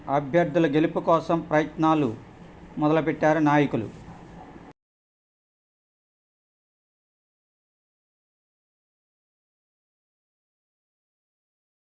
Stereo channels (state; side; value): identical; both; correlation 1.00